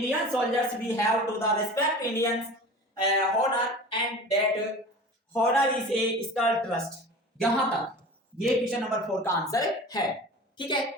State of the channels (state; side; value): normal; both; correlation 0.37